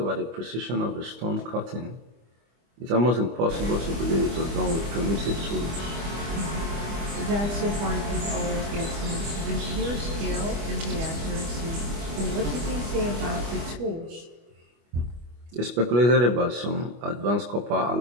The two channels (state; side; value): late; left; 25 ms